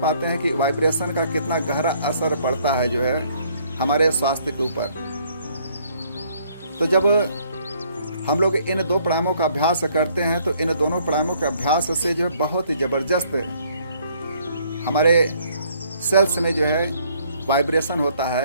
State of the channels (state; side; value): inverted; both; correlation -0.64